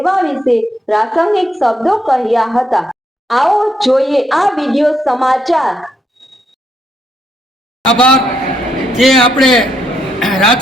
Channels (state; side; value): normal; both; correlation 0.76